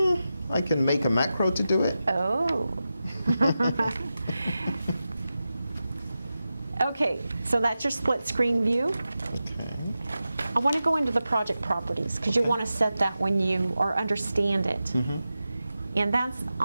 I can make a macro to do it. Oh. Okay, so that's your split screen view. Okay. I want to go into the project properties because you want to set that when you or understand it. And that's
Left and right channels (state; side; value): inverted; both; correlation -0.92